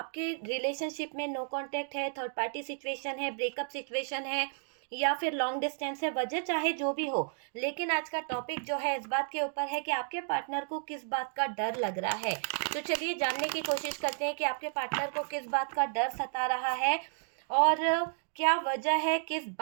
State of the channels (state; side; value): silent; left; digital silence